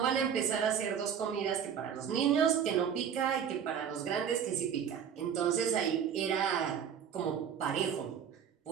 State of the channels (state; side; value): quieter; left; 8.1 dB